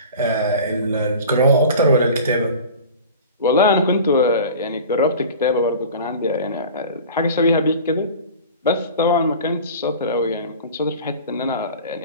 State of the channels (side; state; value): both; inverted; correlation -0.38